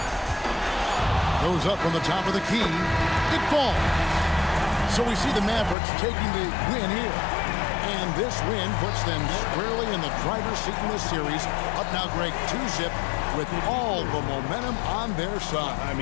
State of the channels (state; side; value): drops out; right; at 5.8 s